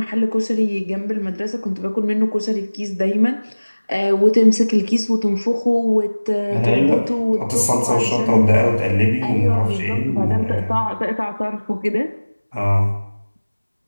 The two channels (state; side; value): inverted; both; correlation -1.00